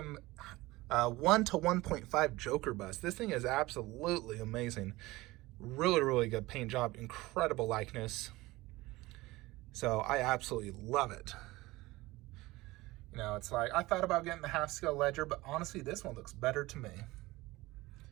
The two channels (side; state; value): left; quieter; 19.9 dB